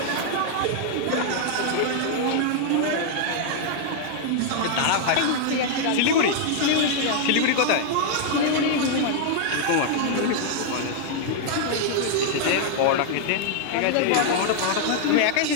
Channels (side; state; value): both; different; correlation -0.01